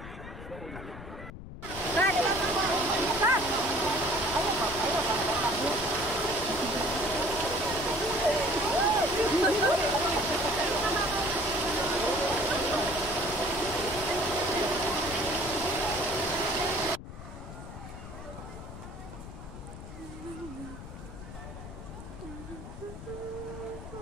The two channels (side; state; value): left; noise; rumble, 12 dB below the sound